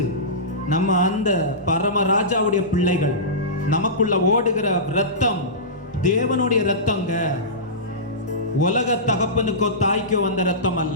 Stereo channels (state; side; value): normal; both; correlation -0.19